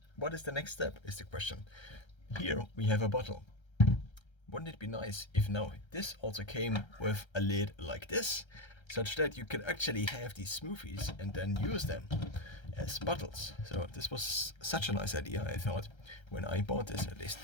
what is the next step is the question. Here we have a bottle. Wouldn't it be nice if now this also came with a lid like this, such that you could actually have these smoothies and then use them as bottles? So this was such a nice idea, I thought, when I bought this at least.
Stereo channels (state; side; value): late; right; 1.3 ms